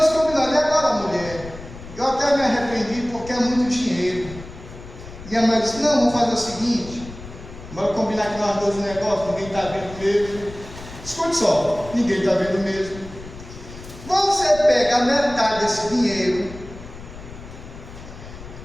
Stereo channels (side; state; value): left; noise; rumble, 15 dB below the sound